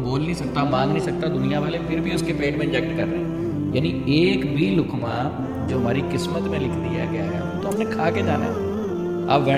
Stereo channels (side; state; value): both; identical; correlation 1.00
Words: نہیں سکتا, مانگ نہیں سکتا, دنیا والے پھر بھی اس کے پیٹ میں انجیکٹ کر رہے ہیں. یعنی ایک بھی لقمہ جو ہماری قسمت میں لکھ دیا گیا ہے تو ہم نے کھا کے جانا ہے. اب